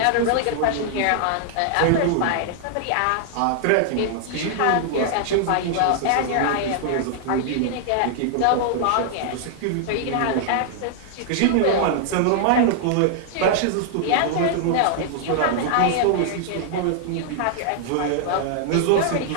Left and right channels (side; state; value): both; different; correlation -0.01